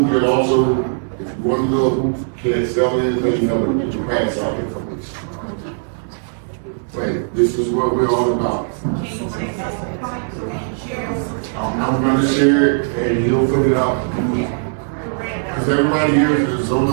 can also, if you want to go, can't sell anything, you know, get your pass out information. But this is what we're all about. I'm going to share it and you'll fill it out. Because everybody here is on the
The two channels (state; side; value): silent; left; digital silence